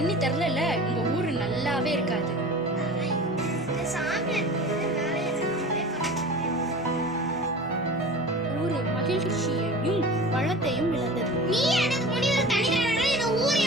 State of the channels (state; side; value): normal; both; correlation 0.37